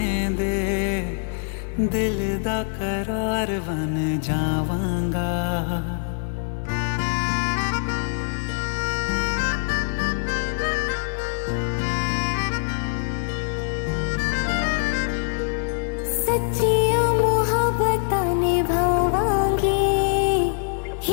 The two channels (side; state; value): right; silent; digital silence